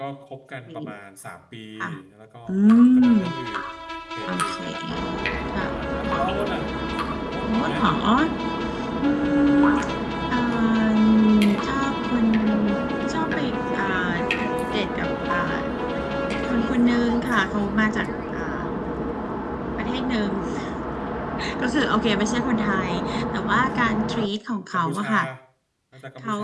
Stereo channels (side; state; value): both; identical; correlation 1.00